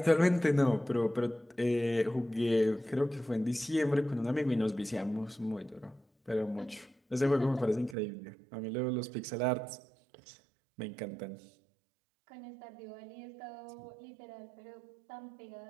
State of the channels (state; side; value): drops out; left; at 8.0 s